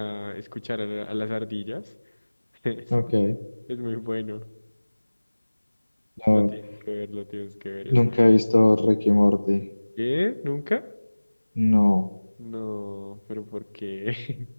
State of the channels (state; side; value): inverted; both; correlation -1.00